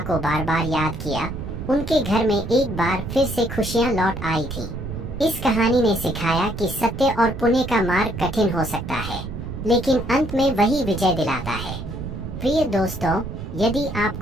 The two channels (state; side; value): noise; right; rumble, 8 dB below the sound